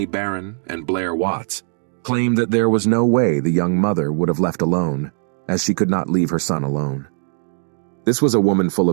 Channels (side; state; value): left; silent; digital silence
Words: Barron and Blair Watts, claimed that there was no way the young mother would have left alone, as she could not leave her son alone. This was a woman full